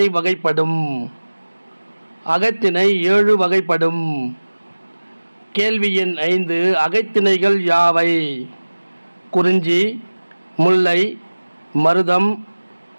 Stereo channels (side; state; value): both; inverted; correlation -1.00